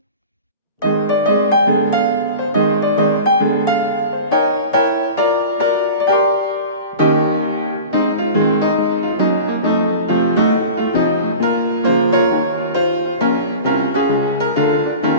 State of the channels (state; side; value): inverted; both; correlation -0.35